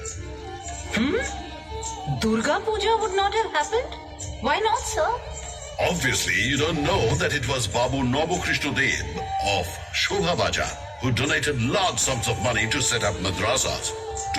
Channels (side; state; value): both; identical; correlation 1.00